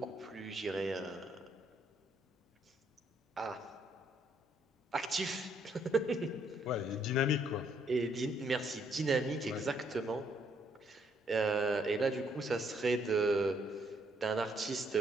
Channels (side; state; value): both; normal; correlation 0.70